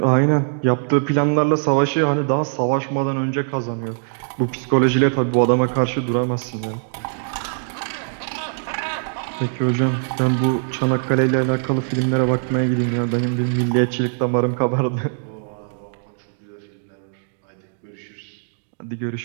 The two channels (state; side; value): silent; left; digital silence